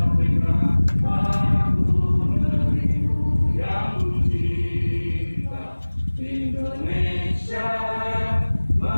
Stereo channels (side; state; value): both; inverted; correlation -1.00